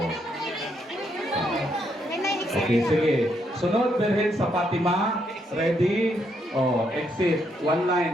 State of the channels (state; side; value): normal; both; correlation 0.76